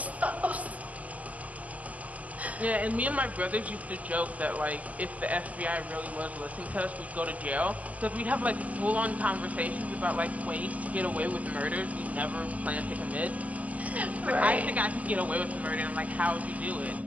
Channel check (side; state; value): left; late; 0.070 ms